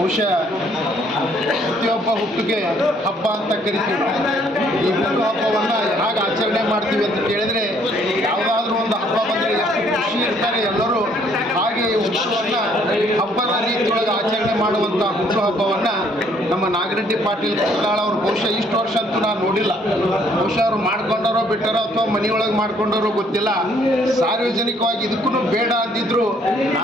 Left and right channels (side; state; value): both; normal; correlation 0.64